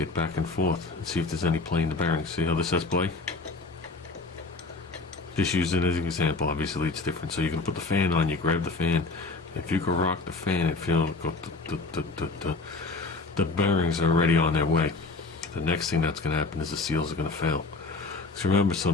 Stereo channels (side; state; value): right; quieter; 3.7 dB